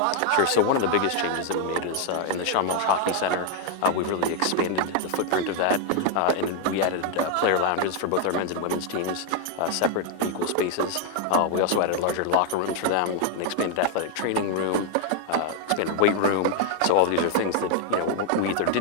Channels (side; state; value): both; different; correlation 0.00